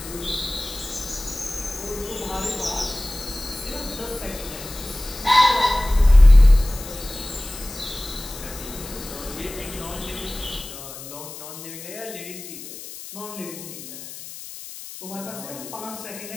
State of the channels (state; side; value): noise; left; hiss, 13 dB below the sound